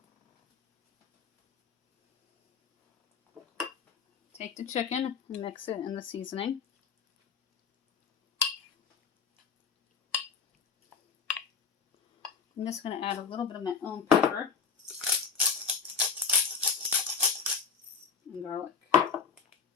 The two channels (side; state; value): right; quieter; 5.8 dB